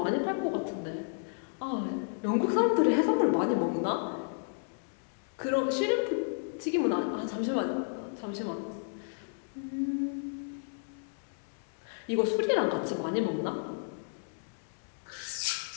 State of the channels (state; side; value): silent; right; digital silence